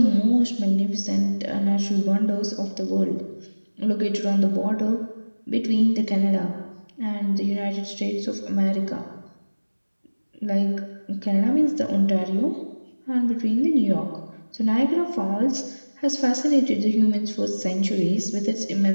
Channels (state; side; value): inverted; both; correlation -1.00